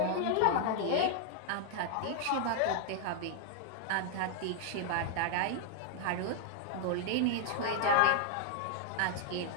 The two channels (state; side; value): different; both; correlation 0.00